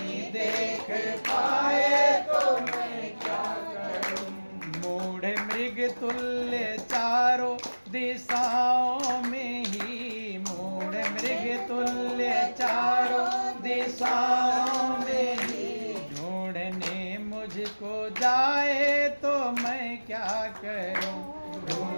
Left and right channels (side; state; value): both; inverted; correlation -1.00